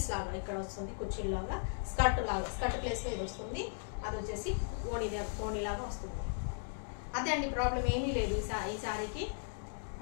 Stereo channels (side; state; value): right; silent; digital silence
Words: లాగా ఇక్కడ వస్తుంది, కుర్చీలు లాగా, స్కర్ట్ ప్లేస్లో ఇది వస్తుంది. అది వచ్చేసి ఓణి లాగా వస్తుంది. అదే అండి, ప్రాబ్లం ఏమీ లేదు ఈ శారీకి.